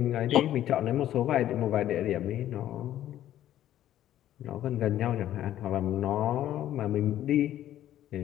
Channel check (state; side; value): quieter; right; 12.3 dB